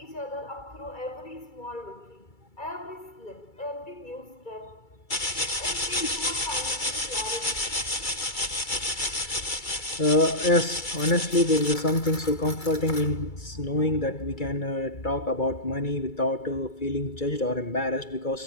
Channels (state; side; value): late; right; 2.3 ms